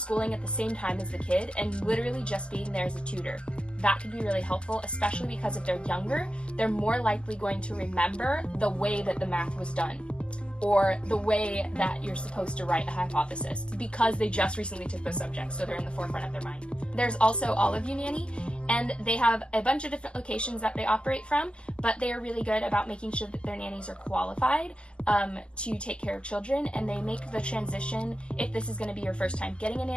at the same time as the kid and literally just being there as a tutor. That could be really helpful, especially because if they're younger, they're more likely going to remember the way that the math was done, or the way that you're supposed to write a hypothesis, because they just recently took those subjects, so they're in the forefront of their mind. There's also All of You Nanny, and they have a bunch of different locations that they operate from, but they are really good about making sure that their nannies are qualified to take care of children, and they make the transition, if this is going to be your first time getting a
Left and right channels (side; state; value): right; late; 0.051 ms